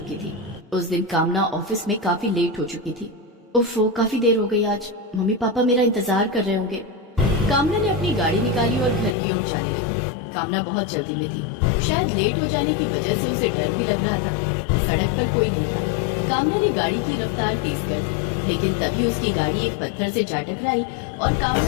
थी। उस दिन कामना ऑफिस में काफी लेट हो चुकी थी। उफ़, काफी देर हो गई आज। मम्मी पापा मेरा इंतजार कर रहे होंगे। कामना ने अपनी गाड़ी निकाली और घर की ओर जाने लगी। कामना बहुत जल्दी में थी। शायद लेट हो जाने की वजह से उसे डर भी लग रहा था। सड़क पर कोई नहीं था। कामना ने गाड़ी की रफ्तार तेज कर दी, लेकिन तभी उसकी गाड़ी एक पत्थर से जा टकराई और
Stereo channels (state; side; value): drops out; right; at 9.2 s